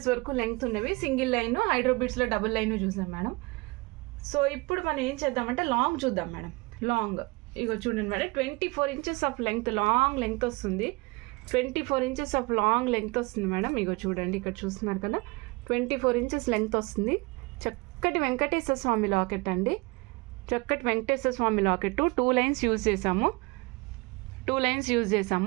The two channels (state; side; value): quieter; left; 25.8 dB